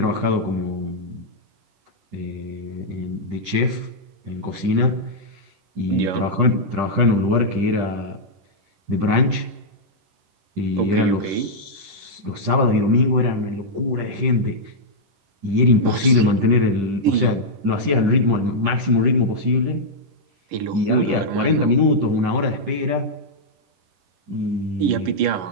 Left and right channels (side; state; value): left; late; 10 ms